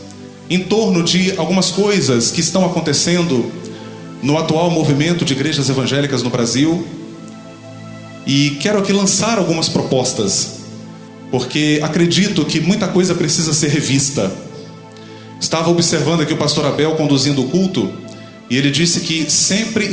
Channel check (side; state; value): both; identical; correlation 1.00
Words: em torno de algumas coisas que estão acontecendo no atual movimento de igrejas evangélicas no Brasil, e quero aqui lançar algumas propostas, porque acredito que muita coisa precisa ser revista. Estava observando aqui o pastor Abel conduzindo o culto, e ele disse que sempre